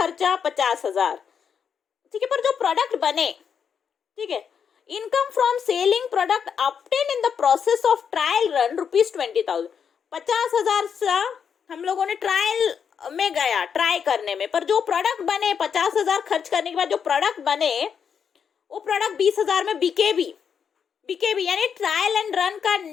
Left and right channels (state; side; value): quieter; right; 7.1 dB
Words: 50,000। ठीक है, पर जो प्रोडक्ट बने, ठीक है, income from selling product obtain in the process of trial run ₹20,000। 50,000 से हम लोगों ने ट्रायल में गया ट्राई करने में, पर जो प्रोडक्ट बने 50,000 खर्च करने के बाद जो प्रोडक्ट बने वो प्रोडक्ट 20,000 में बिके भी। यानी ट्रायल एंड रन का